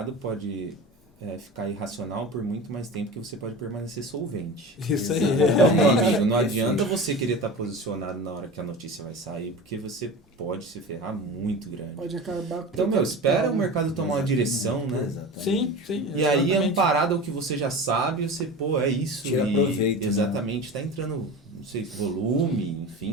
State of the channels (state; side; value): normal; both; correlation 0.31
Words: pode ficar irracional por muito mais tempo que você pode permanecer solvente. Isso aí. Então, meu amigo, não adianta você querer estar posicionado na hora que a notícia vai sair, porque você pode se ferrar muito grande. Pode acabar com Então, espera o mercado tomar uma direção, né? Exatamente. Sim. E aí, exatamente. amparado ao que você já sabe, você, é isso. Tira proveito, né? Exatamente, tá entrando, não sei, volume,